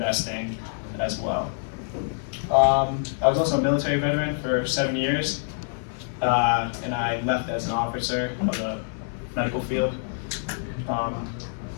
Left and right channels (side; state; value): right; silent; 61 dB below the other